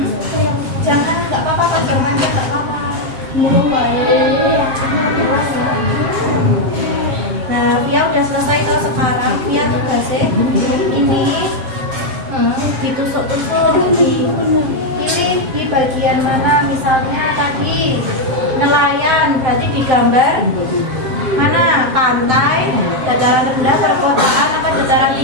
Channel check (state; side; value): late; left; 7.5 ms